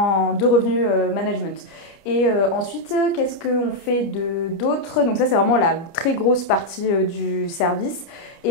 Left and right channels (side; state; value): right; late; 30 ms